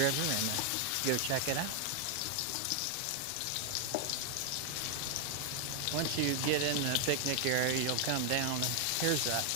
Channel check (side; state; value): both; different; correlation 0.00